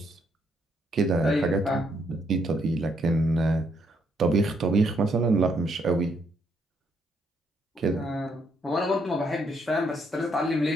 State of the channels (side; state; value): both; normal; correlation 0.73